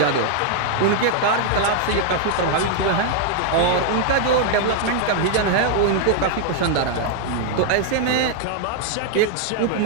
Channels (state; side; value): different; both; correlation 0.00